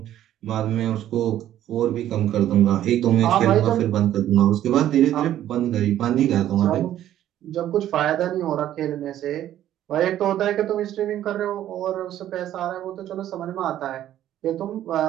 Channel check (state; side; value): quieter; left; 12.1 dB